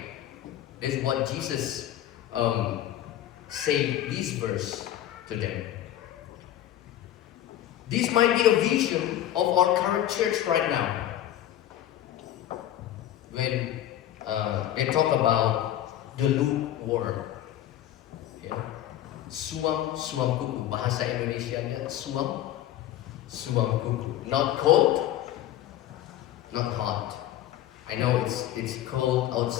That's what Jesus said this verse to them. This might be a vision of our current church right now. When they talk about the lukewarm, ya, suam kuku, bahasa Indonesianya suam kuku, not cold, not hot. I know it's cold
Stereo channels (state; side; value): quieter; right; 12.4 dB